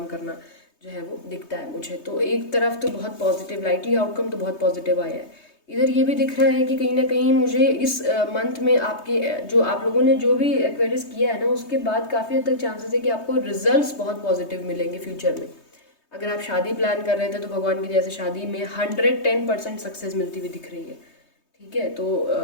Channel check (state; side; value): late; right; 3.2 ms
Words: करना जो है वो दिखता है मुझे। तो एक तरफ तो बहुत पॉजिटिव, लाइटली आउटकम तो बहुत पॉजिटिव आया है। इधर ये भी दिख रहा है कि कहीं ना कहीं मुझे इस मंथ में आपके जो आप लोगों ने जो भी एक्वेरियस किया है ना, उसके बाद काफ़ी हद तक चांसेस है कि आपको रिजल्ट्स बहुत पॉजिटिव मिलेंगे फ्यूचर में। अगर आप शादी प्लान कर रहे थे तो भगवान की दया से शादी में 110% सक्सेस मिलती हुई दिख रही है। ठीक है, तो